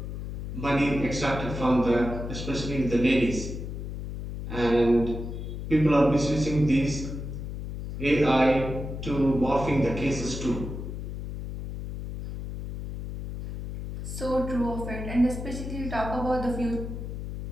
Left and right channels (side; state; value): left; noise; hum, 7 dB below the sound